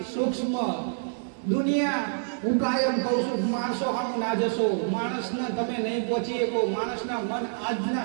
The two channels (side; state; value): left; silent; 56 dB below the other